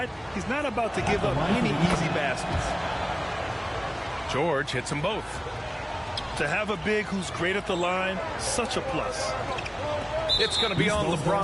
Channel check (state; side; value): identical; both; correlation 1.00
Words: He's not about to give up any easy baskets. George hits them both. To have a big who's great at the line, such a plus. It's going to be on